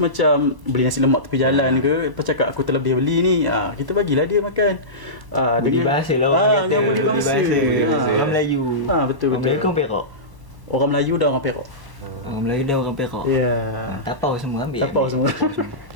macam beli nasi lemak tepi jalan ke, lepas cakap aku terlebih beli ni, kita bagilah dia makan. Budi bahasa lah orang kata. Budi bahasa. Orang Melayu. Betul. Orang Melayu kan Perak. Orang Melayu dan orang Perak. Orang Melayu dan orang Perak. Ya. Tapau semua ambil. Tapau ambil. semua.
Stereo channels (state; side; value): late; left; 1.0 ms